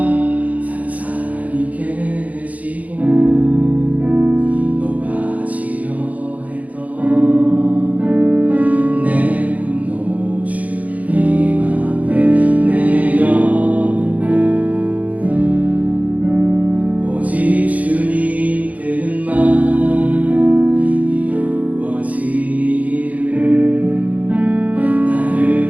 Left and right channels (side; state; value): left; late; 0.072 ms